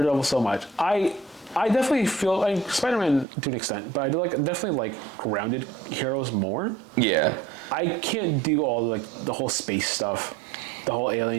so much. I definitely feel like Spider-Man to an extent, but I do definitely like grounded heroes more. Yeah. I can't do all the whole space stuff, the whole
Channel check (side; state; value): left; drops out; at 3.2 s